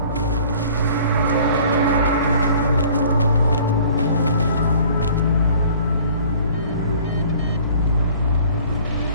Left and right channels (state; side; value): inverted; both; correlation -0.52